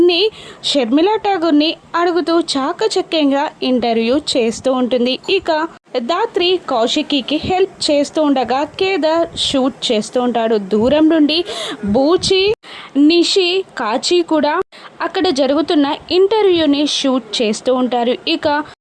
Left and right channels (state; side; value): identical; both; correlation 1.00